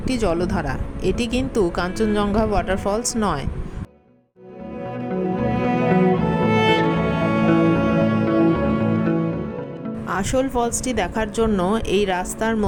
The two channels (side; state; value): both; identical; correlation 1.00